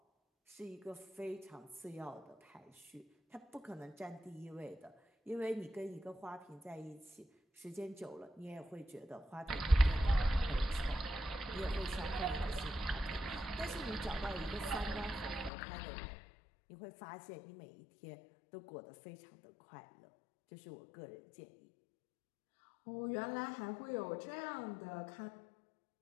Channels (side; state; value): right; drops out; at 15.5 s